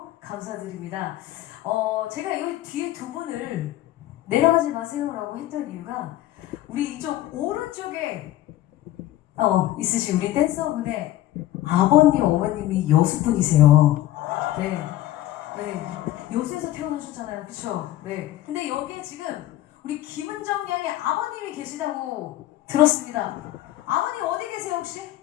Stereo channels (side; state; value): right; quieter; 14.2 dB